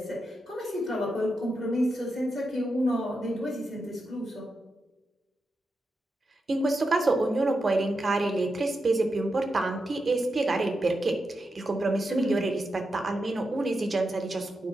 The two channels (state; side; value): normal; both; correlation 0.88